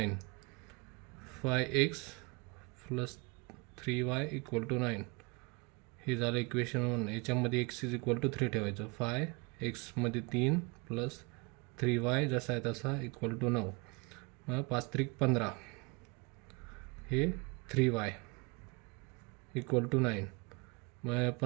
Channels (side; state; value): left; quieter; 28.2 dB